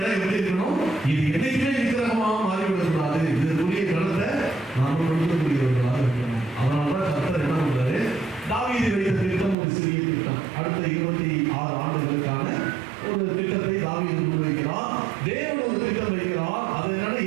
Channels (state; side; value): drops out; left; at 9.6 s